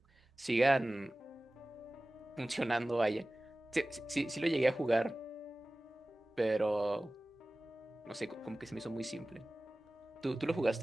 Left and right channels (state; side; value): normal; both; correlation 0.98